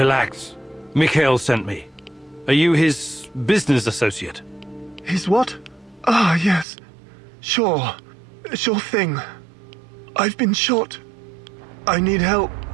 Mikhail sent me. Are you his business associate? His what? Ah, yes. Sure. Sure thing. I've been shot. I need help.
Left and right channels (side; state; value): left; drops out; at 6.7 s